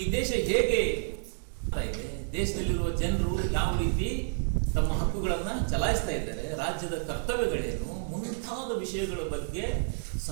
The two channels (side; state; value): left; silent; digital silence